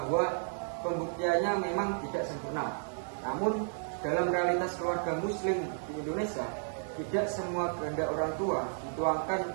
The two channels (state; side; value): silent; left; 56 dB below the other